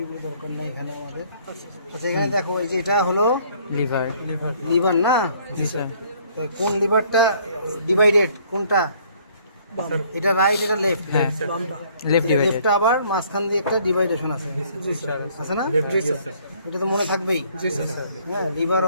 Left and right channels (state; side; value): inverted; both; correlation -0.61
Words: দরকার নেই এখানে আমাদের। আচ্ছা এখানে দেখো এই যে এটা হলো লিভার লিভার না জি স্যার তা কোন লিভারটা ডিভাইডেড কোনটা এটা রাইট এটা লেফট হ্যাঁ লেফট ডিভাইডেড লেফটটা আবার মাঝখান দিয়ে একটা ডিভাইডেশন আছে আছে না এটা তো মনে থাকবেই হ্যাঁ লিভার